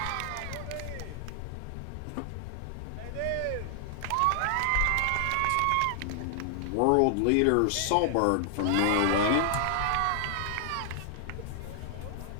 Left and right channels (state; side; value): different; both; correlation 0.00